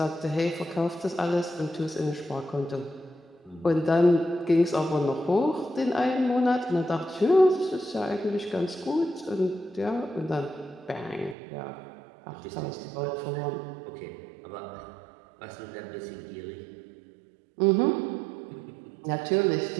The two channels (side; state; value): left; drops out; at 11.4 s